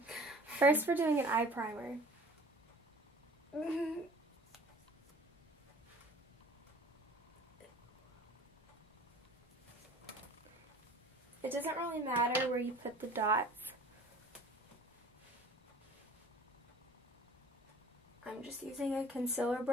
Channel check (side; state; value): both; normal; correlation 0.47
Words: First, we're doing an eye primer. It doesn't really matter where you put the dots. I'm just using a concealer